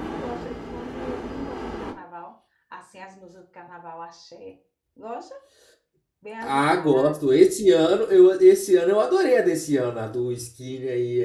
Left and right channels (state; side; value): identical; both; correlation 1.00